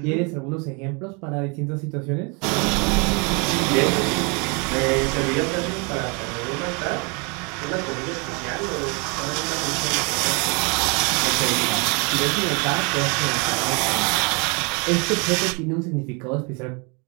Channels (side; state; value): left; quieter; 32.3 dB